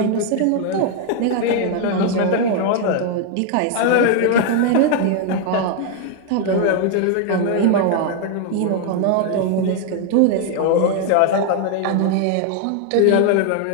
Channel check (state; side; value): different; both; correlation 0.00